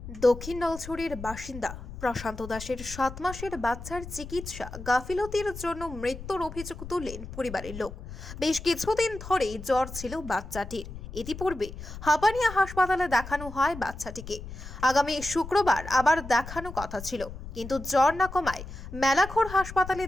দক্ষিণ নলছড়ির বাসিন্দা প্রশান্ত দাসের 7 মাসের বাচ্চার চিকিৎসা গাফিলতির জন্য মৃত্যুর অভিযোগ তুললেন পরিবারের লোক। বেশ কিছুদিন ধরেই জ্বর ছিল বাচ্চাটির। ইতিপূর্বে হাপানিয়া হাসপাতালে দেখানো হয় বাচ্চাটিকে। আগামী শুক্রবার আবার দেখানো কথা ছিল, কিন্তু জ্বর না কমায় মেলাঘর হাসপাতালে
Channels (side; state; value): left; noise; rumble, 12 dB below the sound